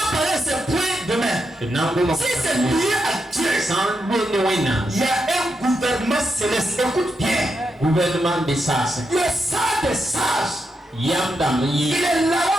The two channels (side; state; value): both; normal; correlation 0.84